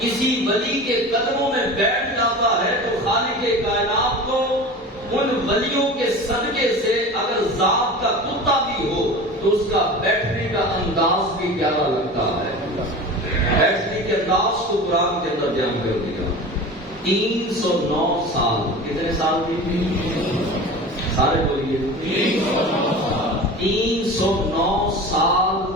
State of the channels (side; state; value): both; normal; correlation 0.34